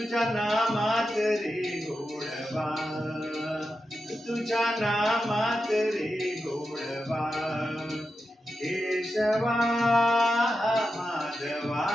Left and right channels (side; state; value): both; normal; correlation 0.90